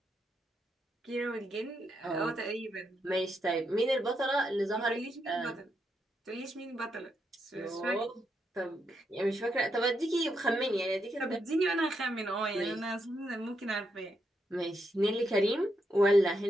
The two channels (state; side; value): normal; both; correlation 0.81